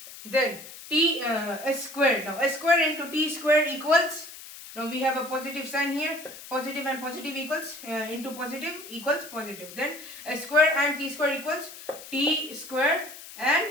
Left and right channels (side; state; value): left; noise; hiss, 15 dB below the sound